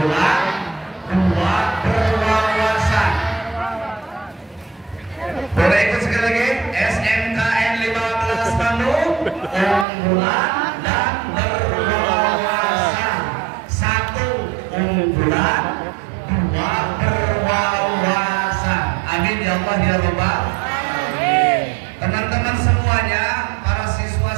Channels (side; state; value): left; drops out; at 9.9 s